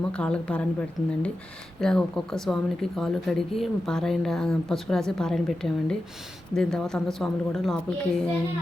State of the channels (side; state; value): both; normal; correlation 0.91